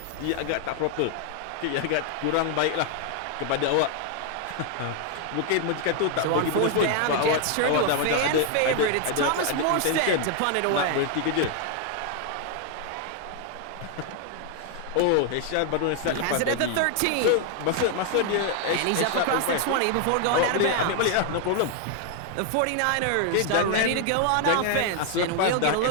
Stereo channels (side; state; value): both; different; correlation 0.00